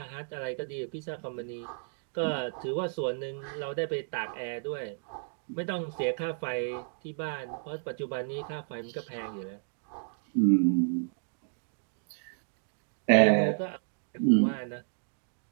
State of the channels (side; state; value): left; silent; digital silence